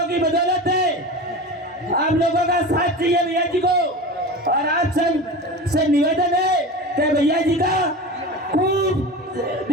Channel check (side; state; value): both; normal; correlation 0.30